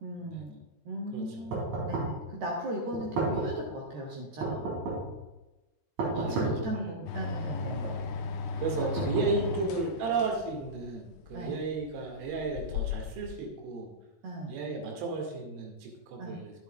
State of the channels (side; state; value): left; late; 13 ms